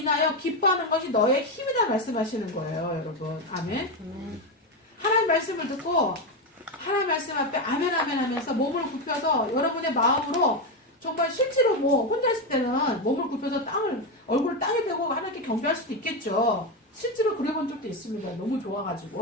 기뻐하는 것이 너의 힘이다 말씀하시는 거예요, 여러분. 아멘. 하나님 말씀을 듣고 하나님 말씀 앞에 아멘 아멘 하면서 몸을 굽혀서 여러분의 마음으로 정말 실제로 뭐 혼자 있을 때는 몸을 굽혀서 얼굴을 땅에 대고 하나님께 경배할 수도 있겠죠. 실제로 그래본 적도 있습니다. 너무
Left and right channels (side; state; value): both; normal; correlation 0.11